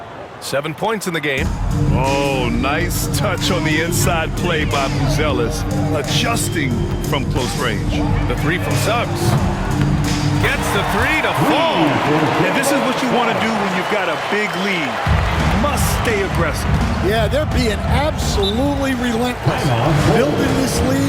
7 points in the game. Oh, nice touch on the inside play by Buzelis, adjusting from close range. The 3 from Suggs. Gets the 3 to fall. And this is what you want to do when you've got a big lead. Must stay aggressive. Yeah, they're being absolutely relentless, building this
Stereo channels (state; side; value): identical; both; correlation 1.00